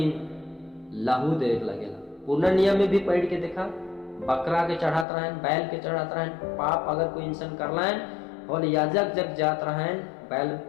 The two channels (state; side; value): drops out; right; at 5.1 s